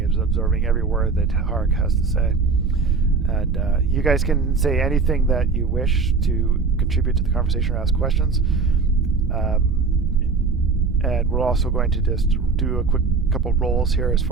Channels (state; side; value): quieter; left; 4.6 dB